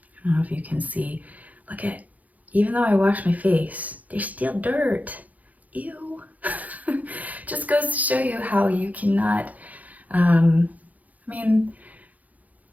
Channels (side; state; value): left; late; 0.077 ms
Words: don't know if you can see, look at, even though I wash my face, there's still dirt. Ew. Just goes to show you how you cannot, I mean,